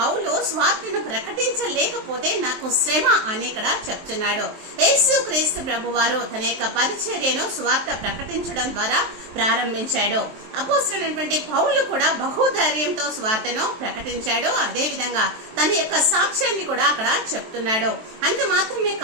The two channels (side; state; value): left; late; 23 ms